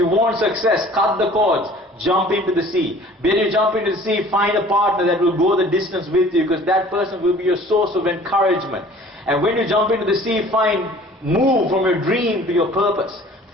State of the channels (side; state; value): both; normal; correlation 0.49